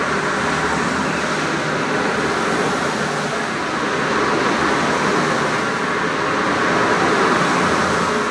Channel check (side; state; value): both; identical; correlation 1.00